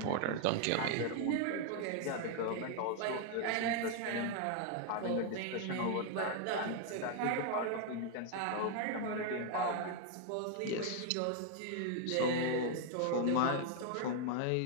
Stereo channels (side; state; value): both; different; correlation 0.00